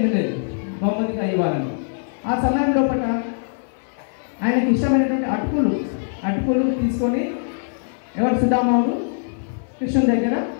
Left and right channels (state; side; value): silent; right; 58 dB below the other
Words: లేదు బహుమతిగా ఇవ్వాలని. ఆ సమయం లోపల ఆయనకి ఇష్టమైనటువంటి అటుకులు తీసుకొని ఎవరు సుధాముడు కృష్ణుని దగ్గర